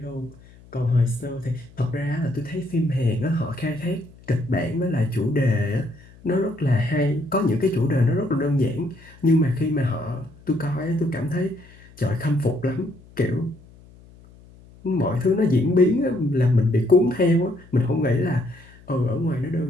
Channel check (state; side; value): noise; left; hum, 24 dB below the sound